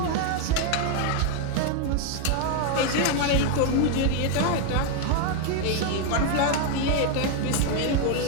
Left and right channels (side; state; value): both; different; correlation 0.01